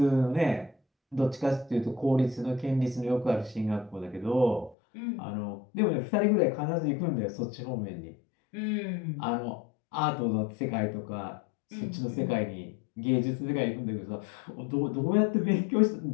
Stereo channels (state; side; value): drops out; right; at 4.8 s